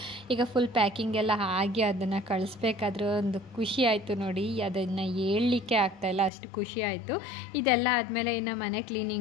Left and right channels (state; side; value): drops out; right; at 6.3 s